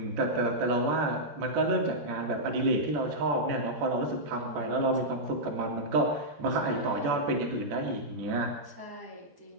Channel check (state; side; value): late; left; 14 ms